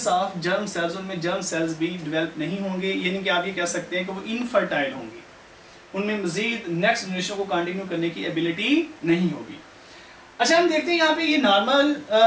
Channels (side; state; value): both; identical; correlation 1.00